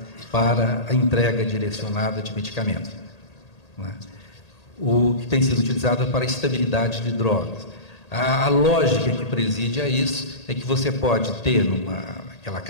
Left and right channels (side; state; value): right; late; 1.8 ms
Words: para a entrega direcionada de medicamentos, né? O que tem sido utilizado para a estabilidade de drogas. A lógica que preside a isso é que você pode ter aquela